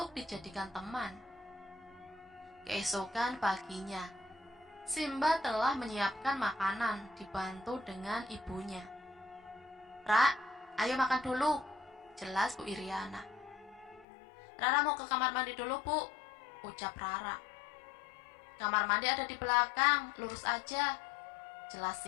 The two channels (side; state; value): right; drops out; at 14.1 s